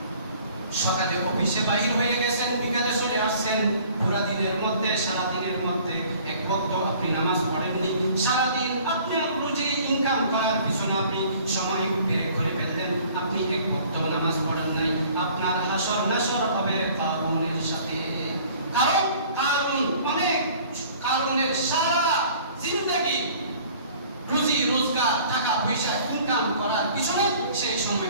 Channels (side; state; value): both; inverted; correlation -0.52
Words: সকালে অফিসে বাহির হয়ে গেছেন, বিকালে চলে আসছেন, পুরা দিনের মধ্যে সারা দিনের মধ্যে এক ওয়াক্ত আপনি নামাজ পড়েননি, সারা দিন আপনি রুজি ইনকাম করার পিছনে আপনি সময় ব্যয় করে ফেললেন, আপনি এক ওয়াক্ত নামাজ পড়েন নাই, আপনার হাসর নাসর হবে কারুনের সাথে। কারণ কারুন অনেক কারুনের সারা জিন্দেগি রুজি রোজগার টাকা পয়সা ইনকাম করার পিছনে সেই সময়